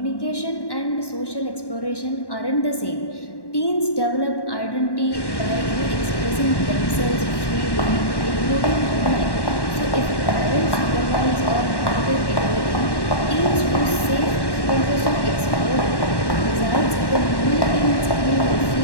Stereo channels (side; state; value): right; late; 1.1 ms